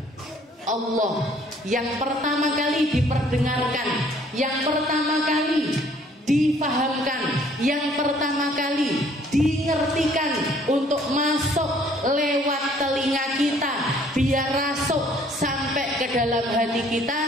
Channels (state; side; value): normal; both; correlation 0.59